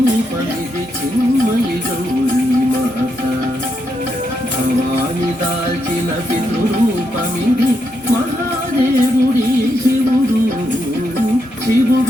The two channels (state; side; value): noise; right; rumble, 29 dB below the sound